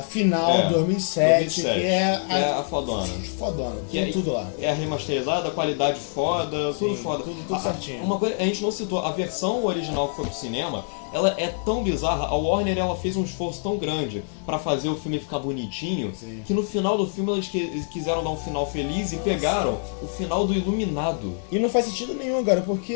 final, 2007, que é a fodona. Fodona, tem tudo lá. É a remasterizada, a qualidade foda, tudo foda. Tudo certinho. Uma coisa, a gente não citou, a versão original que foi pro cinema, ela é tão bizarra, a Warner ela fez um esforço tão grande pra fazer o filme ficar bonitinho, que no final do filme eles quiseram dar um final feliz e pegaram o final do Iluminado. E não faz sentido nenhum, cara,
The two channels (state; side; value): silent; right; 60 dB below the other